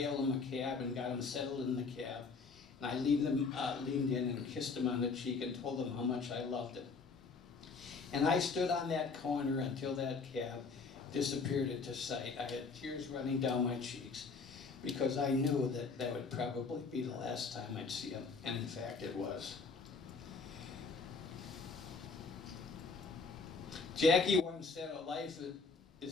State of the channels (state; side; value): quieter; right; 4.5 dB